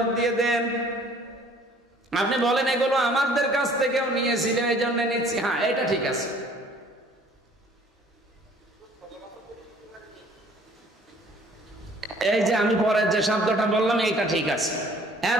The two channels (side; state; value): both; normal; correlation 0.55